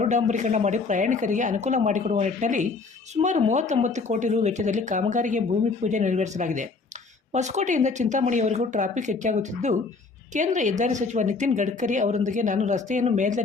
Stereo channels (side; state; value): right; quieter; 4.2 dB